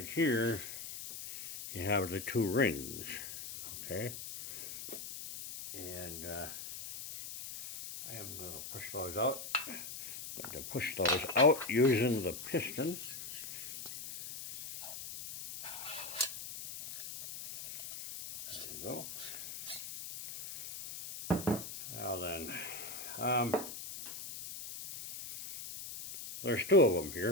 here, you have the 2 rings. Okay? And I am going to push those out. I'm going to push those out using the piston. There you go. Now then, there's 2 of them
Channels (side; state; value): left; noise; hiss, 9 dB below the sound